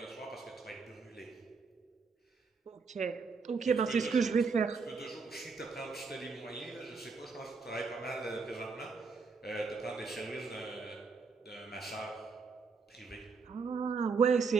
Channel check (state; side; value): quieter; left; 4.8 dB